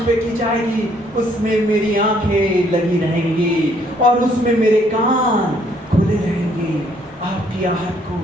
पे की जाएगी, उसमें मेरी आंखें लगी रहेंगी और उसमें मेरे कान खुले रहेंगे। आपकी आहट को,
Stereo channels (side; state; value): both; normal; correlation 0.66